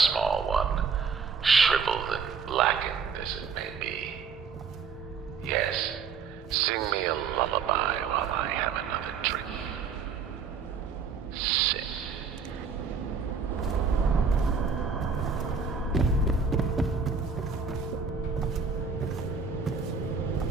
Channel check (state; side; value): quieter; left; 5.7 dB